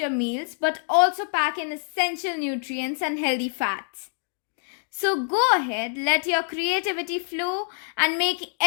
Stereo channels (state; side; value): silent; right; 61 dB below the other